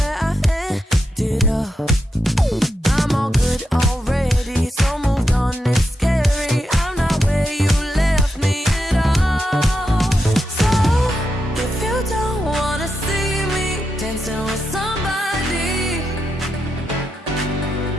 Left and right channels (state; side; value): normal; both; correlation 0.85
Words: I ended up. I'm all good already, so moved on, it's scary. I'm not where you left me at all. So, if you don't wanna see me dancing with somebody,